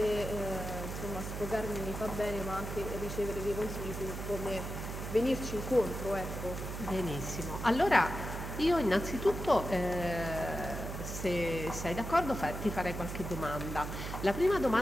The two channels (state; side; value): noise; right; hum, 6 dB below the sound